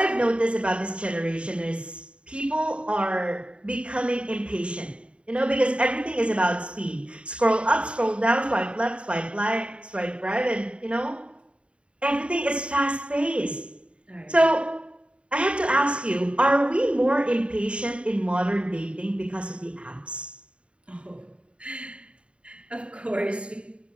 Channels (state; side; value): late; left; 0.058 ms